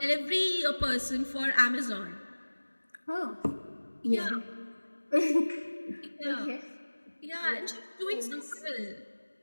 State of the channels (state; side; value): inverted; both; correlation -1.00